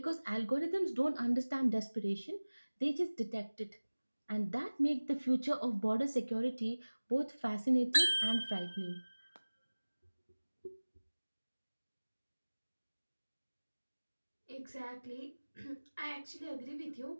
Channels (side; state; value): both; inverted; correlation -1.00